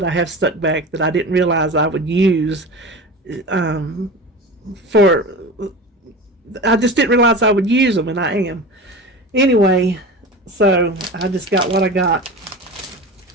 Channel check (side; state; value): both; normal; correlation 0.31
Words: I have stuck back that I didn't realize I would use. I just didn't realize I would use them, and I am. Anyway, so I just got what I got.